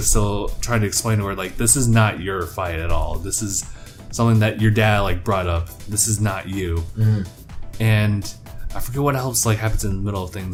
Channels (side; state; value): both; identical; correlation 1.00